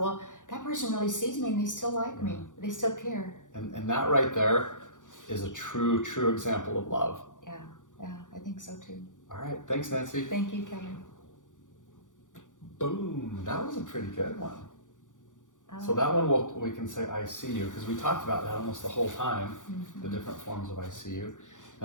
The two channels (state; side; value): late; right; 0.87 ms